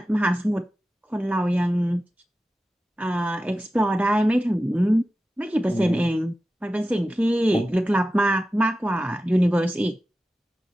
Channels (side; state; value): both; normal; correlation 0.94